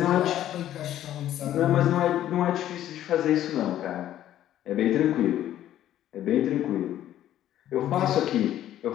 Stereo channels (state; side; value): quieter; right; 12.2 dB